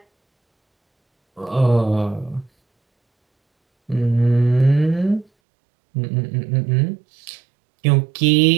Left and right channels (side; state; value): left; drops out; at 5.2 s